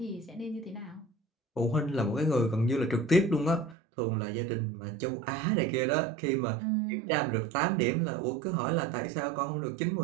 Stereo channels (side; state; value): left; drops out; at 3.8 s